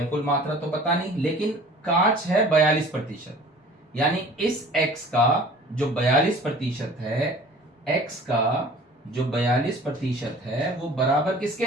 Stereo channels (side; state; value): both; normal; correlation 0.47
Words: कुल मात्रा तो पता नहीं, लेकिन कांच है 42%, यानी इस x का जो 42% है, x का जो 42% है वो बराबर किसके